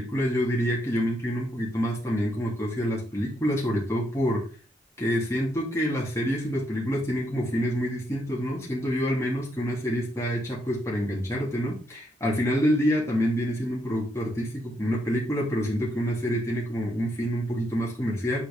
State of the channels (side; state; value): both; normal; correlation 0.77